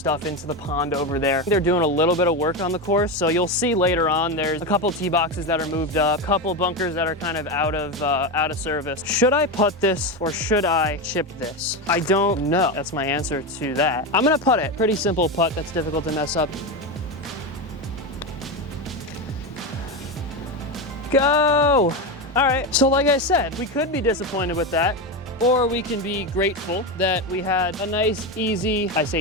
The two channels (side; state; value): both; normal; correlation 0.15